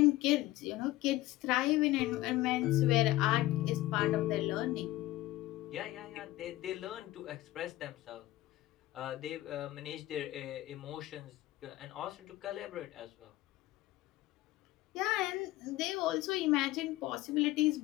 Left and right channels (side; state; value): right; quieter; 16.9 dB